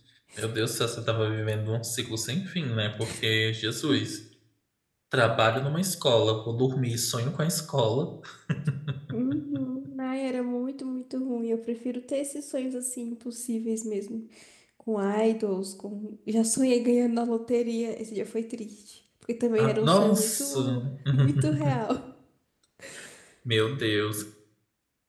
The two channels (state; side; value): identical; both; correlation 1.00